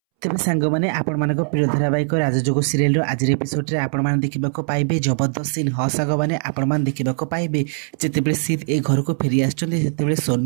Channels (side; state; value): left; silent; 65 dB below the other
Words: तेज सांग मैंने आपण मान प्रिय धारावाहिक राजजोग सीरियल आज एपिसोड आपण मैंने देखा पाइबे जबरदस्त सीन हसाग मैंने आपण मैंने देखा पाइबे जितेबाला सीत ए घर को फेरी आसते